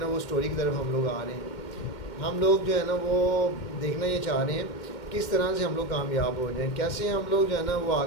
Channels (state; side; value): late; right; 2.1 ms